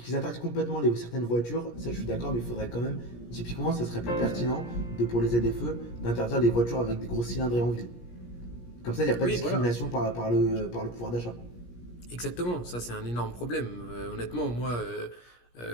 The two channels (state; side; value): late; right; 17 ms